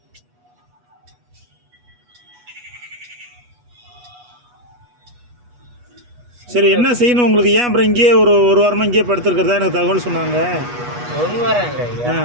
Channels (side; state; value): left; late; 8.2 ms